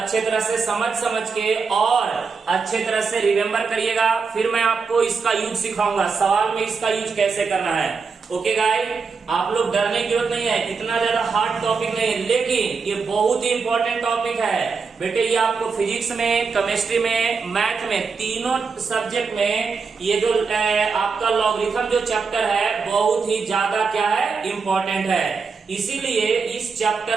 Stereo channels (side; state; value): left; quieter; 5.1 dB